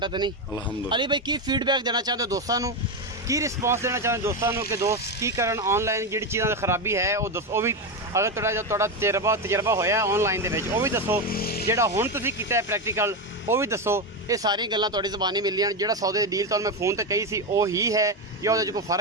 ਤਾਂ ਨਹੀਂ? ਅਲਹਮਦੁਲਿਲਾ। ਅਲੀ ਭਾਈ ਕੀ ਫੀਡਬੈਕ ਦੇਣਾ ਚਾਹੁੰਦੇ ਹੋ ਦੋਸਤਾਂ ਨੂੰ ਕੀ ਰਿਸਪੌਂਸ ਦੇਣਾ ਚਾਹੁੰਦੇ ਦੋਸਤਾਂ ਨੂੰ ਕਿ ਦੋਸਤ ਕੀ ਕਰਨ ਆਨਲਾਈਨ ਜਿਹੜੀ ਚੀਜ਼ਾਂ ਦੀ ਖਰਾਬੀ ਹੈ ਉਹ ਦੱਸੋ ਉਹ ਵੀ ਅਗਰ ਤੁਹਾਡਾ ਤਜਰਬਾ ਹੋਇਆ ਆਨਲਾਈਨ ਦੇ ਵਿੱਚ ਉਹ ਵੀ ਦੱਸੋ ਜਿਹੜਾ ਹੁਣ ਤੁਸੀਂ ਕੀਤਾ ਹੈ ਪ੍ਰੈਕਟੀਕਲ ਉਹ ਵੀ ਦੱਸੋ। ਇਹ ਸਾਰੀਆਂ ਗੱਲਾਂ ਤੁਹਾਡੀ ਜ਼ਬਾਨੀ ਮਿਲੀਆਂ ਜਿਹੜਾ ਸੌਦੇ ਦੀ ਡੀਲ ਤੁਹਾਨੂੰ ਮੈਂ ਫੋਨ ਤੇ ਕਹੀ ਸੀ ਉਹ ਹੀ ਹੈ ਜਾਂ ਉਹਦੇ 'ਚ ਕੋਈ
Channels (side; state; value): both; normal; correlation 0.12